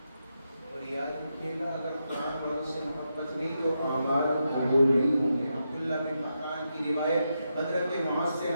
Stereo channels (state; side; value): inverted; both; correlation -0.85